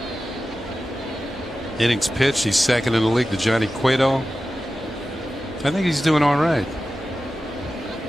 innings pitched. He's second in the league to Johnny Cueto. I think he's doing all right.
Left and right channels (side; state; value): both; normal; correlation 0.94